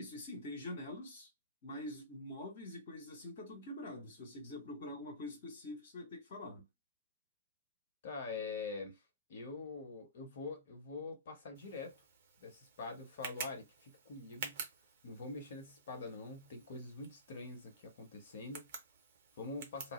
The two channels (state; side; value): inverted; both; correlation -0.33